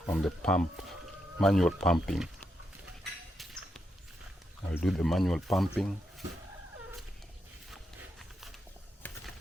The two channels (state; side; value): normal; both; correlation 0.83